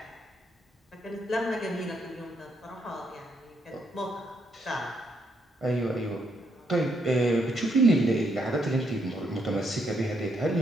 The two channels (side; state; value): both; normal; correlation 0.75